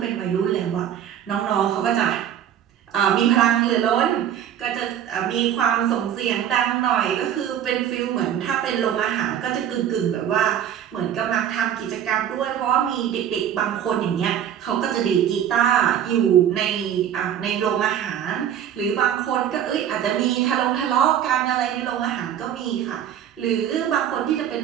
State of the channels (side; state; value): left; quieter; 9.9 dB